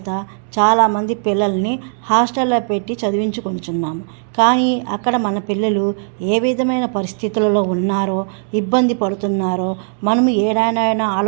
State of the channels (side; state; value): left; silent; digital silence